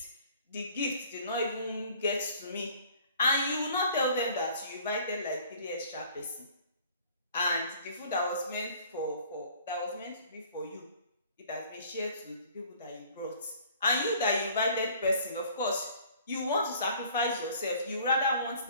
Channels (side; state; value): both; inverted; correlation -0.53